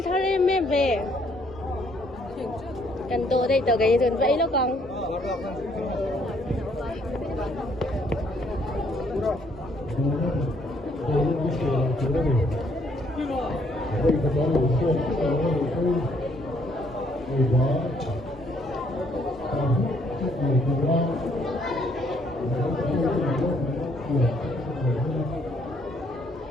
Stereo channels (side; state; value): both; normal; correlation 0.67